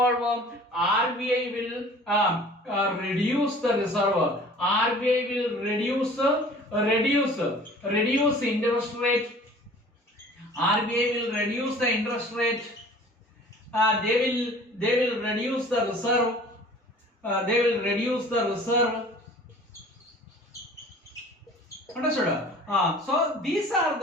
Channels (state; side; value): normal; both; correlation 0.47